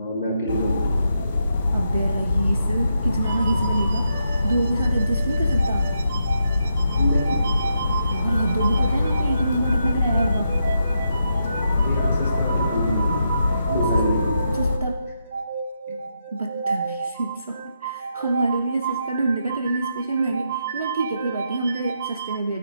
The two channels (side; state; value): both; inverted; correlation -0.81